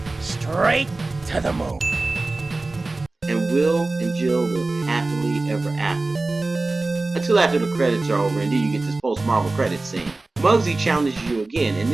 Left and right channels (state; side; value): quieter; left; 3.2 dB